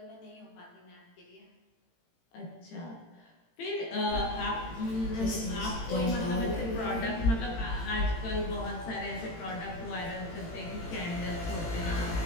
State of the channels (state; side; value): late; right; 18 ms